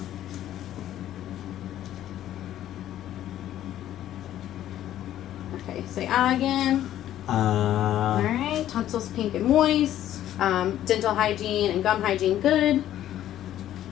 Okay, say ah again. Alright, tonsils pink and moist. Dental hygiene and gum hygiene good.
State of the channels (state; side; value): quieter; right; 12.2 dB